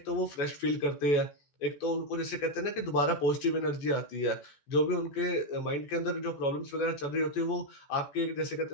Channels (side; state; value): right; late; 14 ms